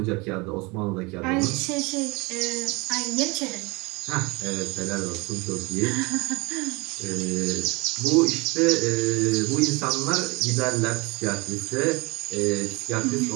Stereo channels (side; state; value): left; quieter; 25.9 dB